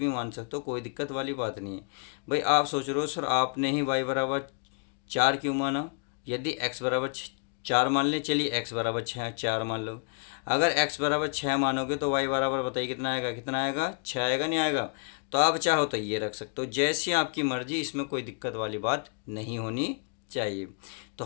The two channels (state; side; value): quieter; right; 37.9 dB